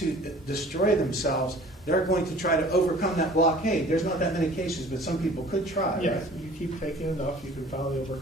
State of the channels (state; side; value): normal; both; correlation 0.49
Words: destroy themselves, they're going to try to overcome that blockade. There's not that many cases, but some people could try. Yeah, Right? you keep taking enough, you can finally